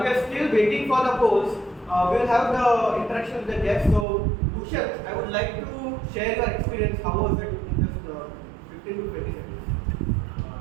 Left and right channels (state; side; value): drops out; left; at 4.0 s